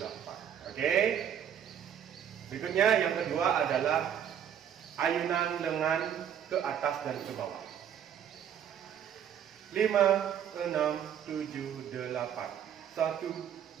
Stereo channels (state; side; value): quieter; left; 9.1 dB